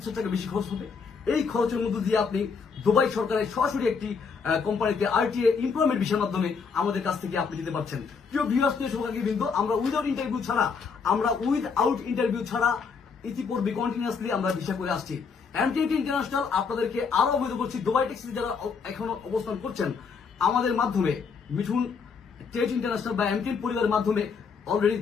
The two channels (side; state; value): right; quieter; 5.5 dB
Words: টাকা বেশি খরচ হবে। এই খরচের মধ্য দিয়ে আপনি দুবাই সরকারের সরাসরি একটি কোম্পানিতে আরটিএ এমপ্লয়মেন্ট ভিসার মাধ্যমে আমাদের কাছ থেকে আপনি যেতে পারছেন। প্রিয় ভিউয়ার্স, কিন্তু আমরা উইদাউট ইন্টারভিউ ছাড়া ইতিপূর্বে কন্টিনিউয়াসলি আমরা ভিসা করে আসছি। এমটিএটি ইন্টারন্যাশনাল আপনাদেরকে আরো অবহিত করছি, দুবাই ট্যাক্সিতে যারা এখনো অবস্থান করছেন আমাদের মাধ্যমে, মিঠুন টেট ইন্টারন্যাশনাল বা এমটিএন পরিবারের মাধ্যমে অলরেডি